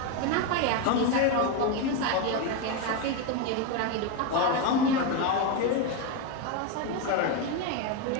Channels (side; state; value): both; different; correlation 0.03